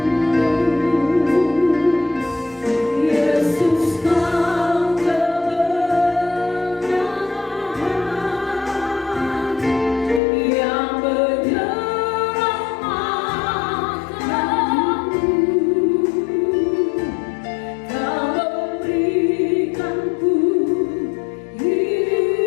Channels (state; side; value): drops out; right; at 10.2 s